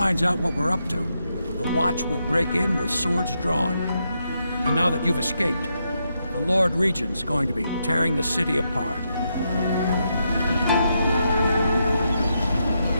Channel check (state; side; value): inverted; both; correlation -0.82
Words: out what we're up to, the Watch will break in with swords drawn. And now that you've escaped, the Lord Regent's going to be tearing the city apart.